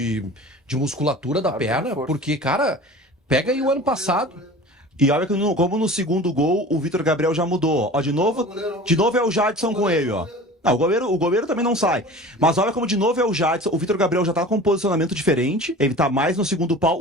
musculatura da Claro que é perna. reforço. Porque, cara, pega aí o ano passado. E olha que como no segundo gol, o Vitor Gabriel já mudou. Ó, de novo é o Jadson com ele, ó. Não, o goleiro também não sai. Mas olha como de novo é o Jadson. O Vitor Gabriel já tá com um posicionamento diferente. Ele tá mais no segundo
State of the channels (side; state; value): both; normal; correlation 0.39